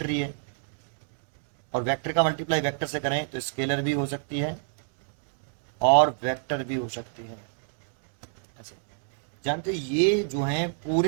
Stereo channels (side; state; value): left; silent; digital silence